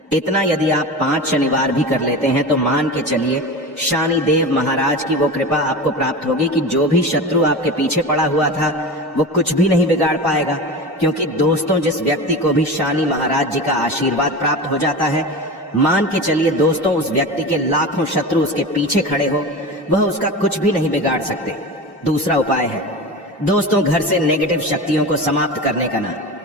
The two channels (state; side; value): normal; both; correlation 0.28